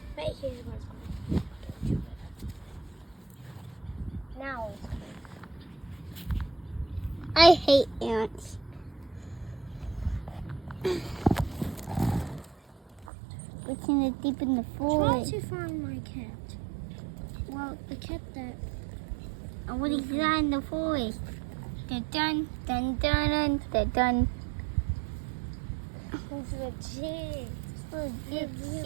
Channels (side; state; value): left; drops out; at 13.1 s